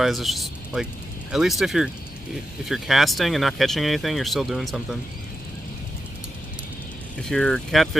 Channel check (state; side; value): normal; both; correlation 0.89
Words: it's just like, at least if you're casting and not catching anything, you're still doing something. If you're